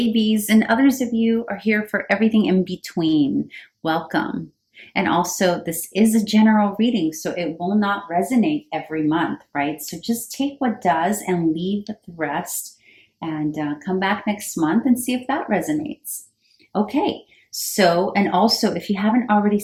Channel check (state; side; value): identical; both; correlation 1.00